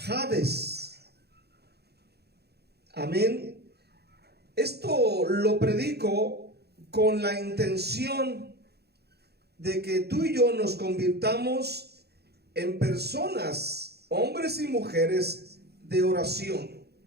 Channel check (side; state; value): left; late; 0.47 ms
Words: Amén. Esto lo predico con la intención de que tú y yo nos convirtamos en personas, hombres y mujeres de oración.